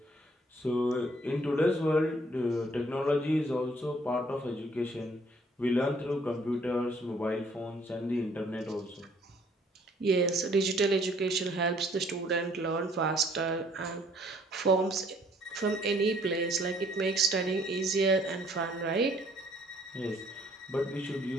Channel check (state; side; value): normal; both; correlation 0.61